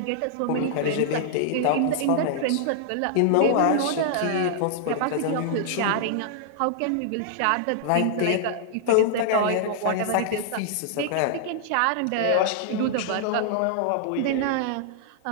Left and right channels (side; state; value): both; different; correlation -0.01